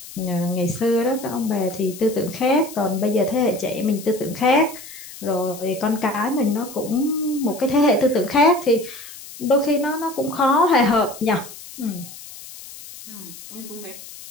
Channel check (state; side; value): noise; left; hiss, 15 dB below the sound